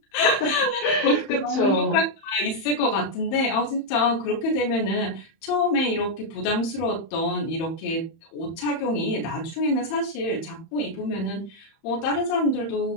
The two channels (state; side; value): late; right; 31 ms